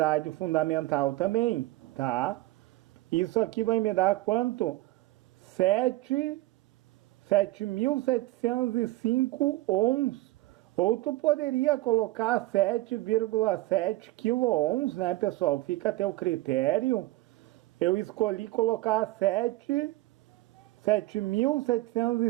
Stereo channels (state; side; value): quieter; left; 18.5 dB